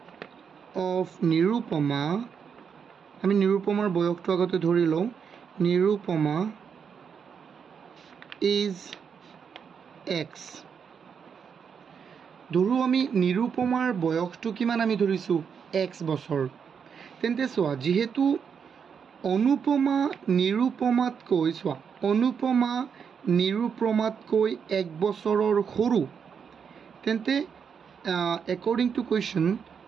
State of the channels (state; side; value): quieter; left; 6.8 dB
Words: of Nirupama আমি নিৰুপমাৰ বয়সটো আগতে ধৰি লওঁ Nirupama is x ধৰু আমি নিৰুপমাৰ বয়সটো কিমান আমি ধৰিছো x বছৰ তেন্তে সোৱা যেহেতু অনুপমা নিৰুপমাতকৈ সোৱা অনুপমা নিৰুপমাতকৈ 1 বছৰৰ সৰু তেন্তে according